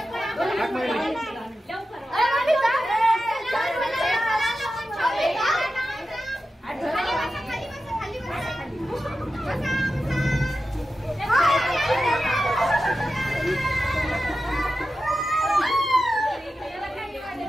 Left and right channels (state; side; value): normal; both; correlation 0.92